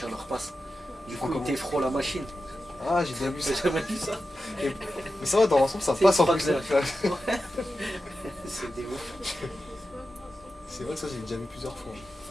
leur passe. Du coup, Comment ils t'effront la machine. Ah, j'ai déjà vu ça. J'ai jamais vu ça. Mais ça va, dans l'ensemble, ça C'est passe en pas plus. clair. C'est des ouf. C'est vrai que ça, j'ai déjà vu plusieurs fois.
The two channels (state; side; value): normal; both; correlation 0.92